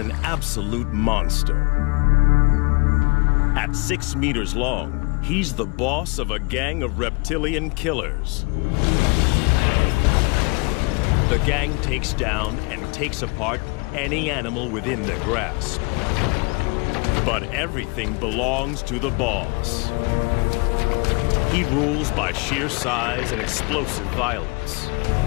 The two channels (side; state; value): right; quieter; 30.2 dB